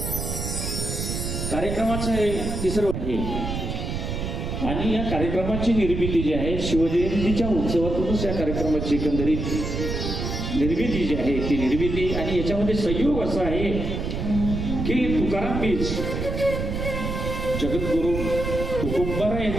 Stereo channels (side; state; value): right; noise; rumble, 3 dB below the sound